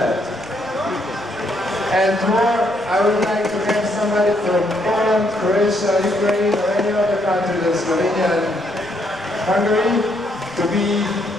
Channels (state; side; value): noise; right; rumble, 23 dB below the sound